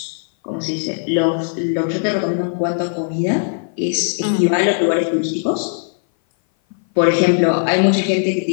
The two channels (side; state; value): right; silent; 58 dB below the other